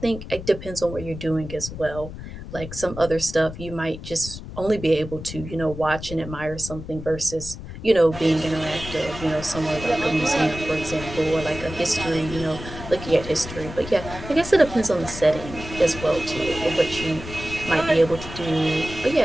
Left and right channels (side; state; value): left; noise; rumble, 11 dB below the sound